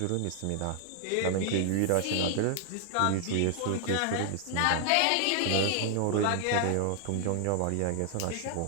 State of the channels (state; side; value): different; both; correlation 0.00